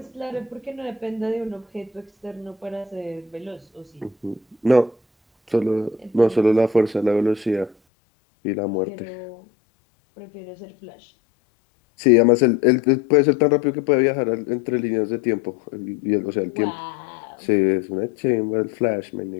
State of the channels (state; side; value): drops out; right; at 7.8 s